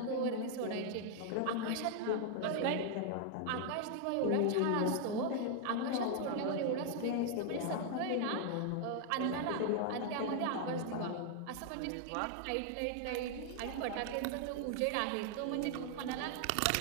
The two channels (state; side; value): different; both; correlation 0.00